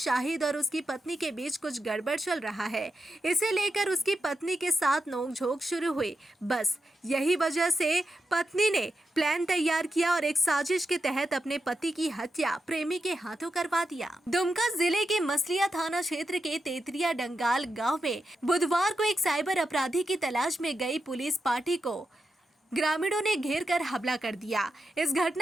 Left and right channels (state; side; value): normal; both; correlation 0.87